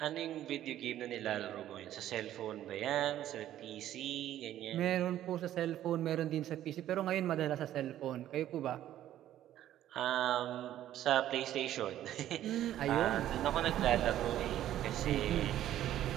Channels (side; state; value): left; quieter; 12.4 dB